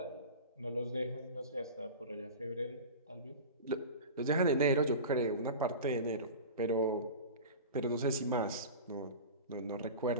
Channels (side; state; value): both; inverted; correlation -0.31